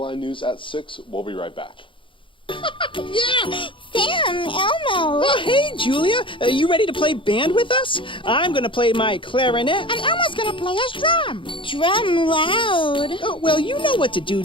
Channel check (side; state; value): right; late; 0.25 ms